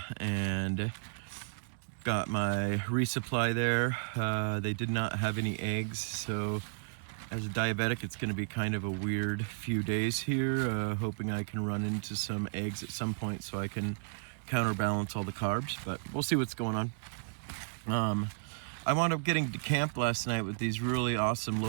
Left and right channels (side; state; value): left; silent; digital silence